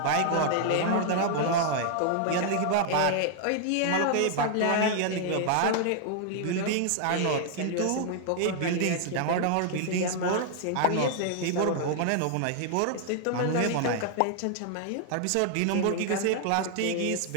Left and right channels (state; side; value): different; both; correlation 0.00